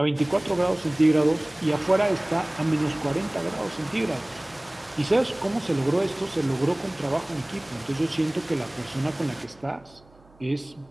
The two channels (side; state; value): right; noise; hum, 28 dB below the sound